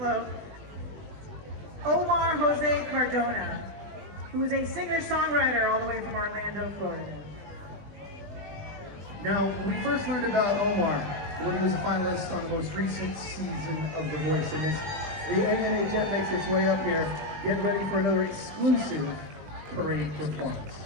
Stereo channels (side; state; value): left; late; 20 ms